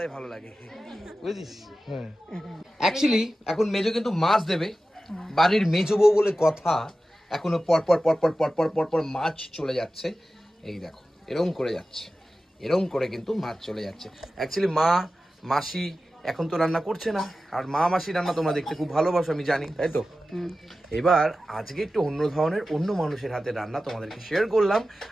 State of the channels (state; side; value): normal; both; correlation 0.94